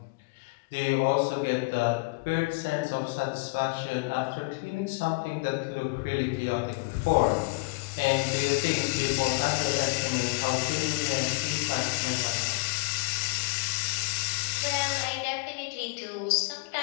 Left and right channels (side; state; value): right; quieter; 29.2 dB